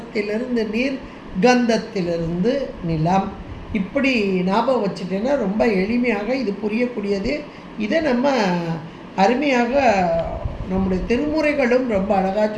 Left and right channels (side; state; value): both; identical; correlation 1.00